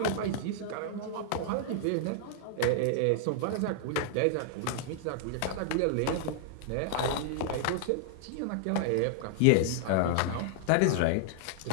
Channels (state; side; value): different; both; correlation -0.01